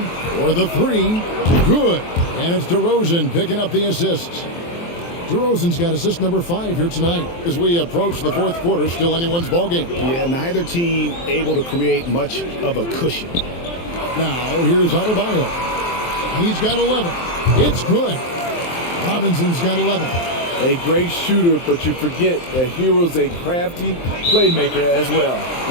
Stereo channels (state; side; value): late; right; 23 ms